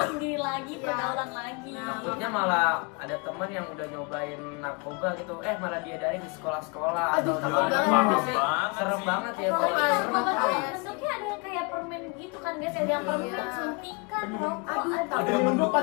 sendiri lagi, Iya. pergaulan lagi. Takutnya malah ada teman yang udah nyobain narkoba gitu, malah diadain di sekolah-sekolah Aduh, atau di takut mana banget. sih. Serem banget ya Kalau kalau narkoba tuh Kayak bentuknya ada yang kayak permen gitu kan guys, ada yang permen Iya. suntikan, rokok, Aduh, aduh. Ada yang penyelundupan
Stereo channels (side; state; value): right; quieter; 31.6 dB